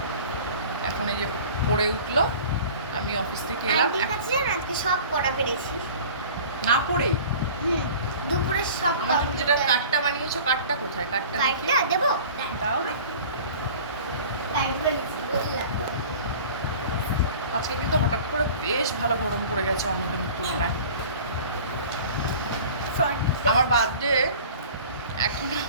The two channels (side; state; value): both; inverted; correlation -0.42